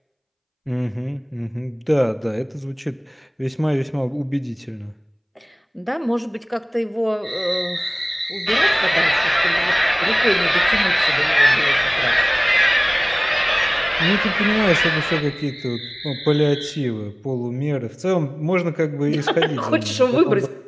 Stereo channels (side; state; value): both; identical; correlation 1.00